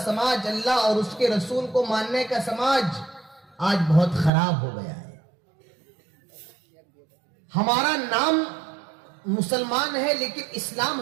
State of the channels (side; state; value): left; drops out; at 4.3 s